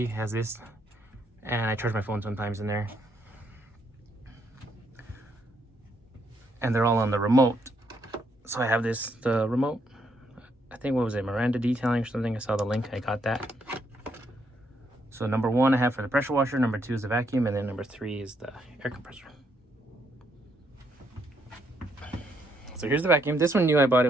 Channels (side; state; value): both; normal; correlation 0.74